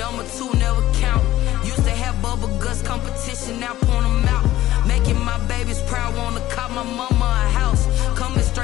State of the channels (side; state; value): right; quieter; 14.9 dB